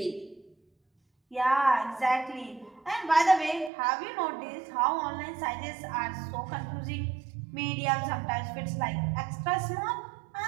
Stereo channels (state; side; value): drops out; left; at 3.7 s